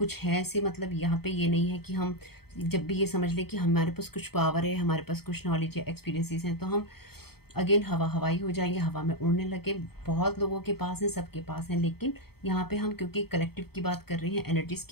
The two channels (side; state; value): right; late; 0.96 ms